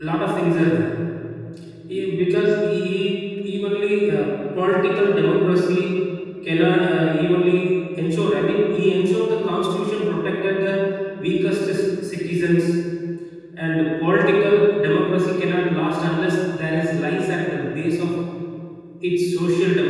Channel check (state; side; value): identical; both; correlation 1.00